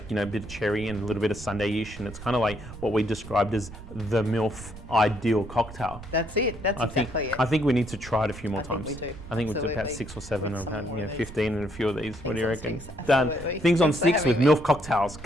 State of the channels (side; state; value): right; noise; rumble, 14 dB below the sound